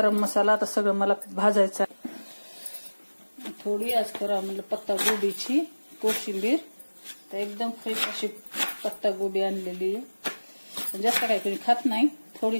मसाला। आता सगळं मला भाजायचं आहे। थोडी आज करा म्हणलं पत्ता गोबीची कोशिंबीर। तर एकदम फ्रेश अशी पत्ता गोबी आणलेली आहे। जास्त काही कोणी खात नाही,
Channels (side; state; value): both; inverted; correlation -1.00